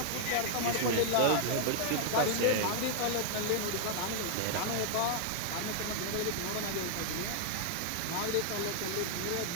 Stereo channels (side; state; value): both; different; correlation -0.01